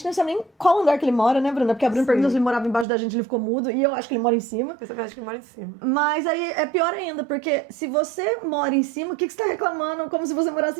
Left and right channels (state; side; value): drops out; left; at 2.9 s